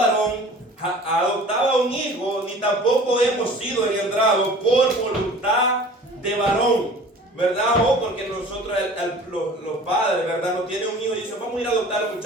adoptaba un hijo, ni tampoco hemos sido engendrados por voluntad de varón, ¿verdad? O porque nosotros, los padres, ¿verdad? No tienen un hijo y dicen, vamos a ir a adoptar a un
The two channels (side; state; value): both; normal; correlation 0.45